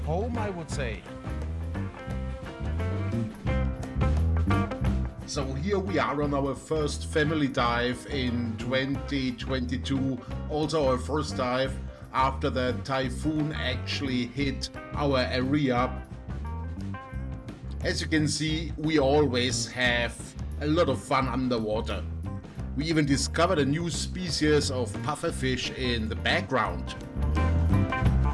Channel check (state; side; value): identical; both; correlation 1.00